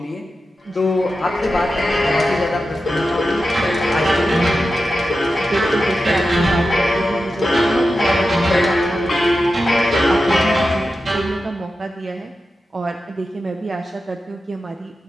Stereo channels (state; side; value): normal; both; correlation 0.91